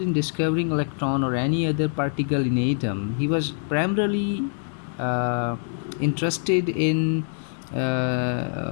in discovering electron or any other particle in atom. He was primarily interested in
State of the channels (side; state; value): right; silent; digital silence